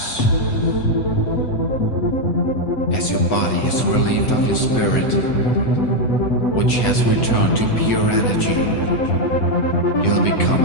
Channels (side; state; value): right; late; 8.0 ms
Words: As your body is relieved of your spirit, which has returned to pure energy, you'll become